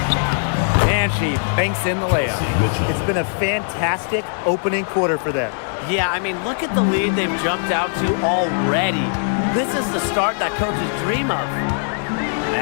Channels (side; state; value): right; silent; digital silence